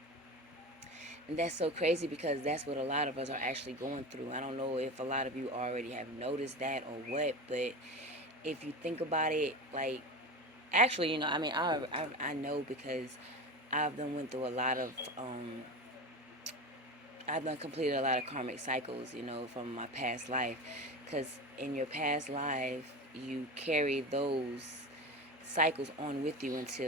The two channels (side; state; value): both; normal; correlation 0.26